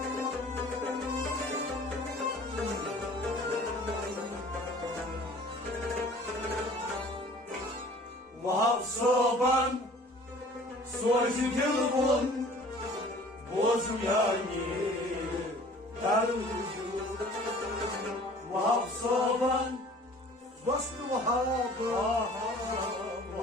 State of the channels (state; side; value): normal; both; correlation 0.49